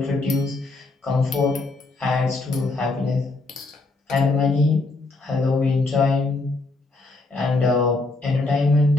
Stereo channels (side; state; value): right; quieter; 3.3 dB